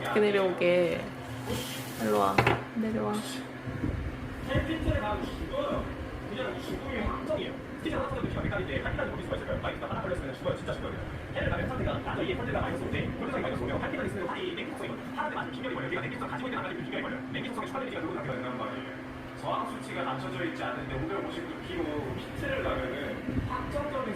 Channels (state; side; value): identical; both; correlation 1.00